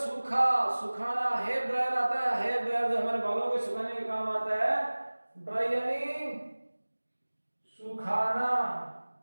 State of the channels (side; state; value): both; inverted; correlation -1.00